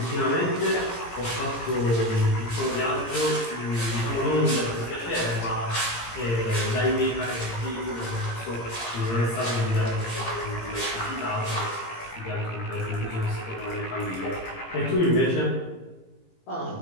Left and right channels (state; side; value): late; right; 17 ms